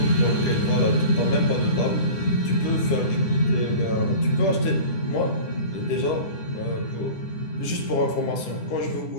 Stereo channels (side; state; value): right; late; 9.8 ms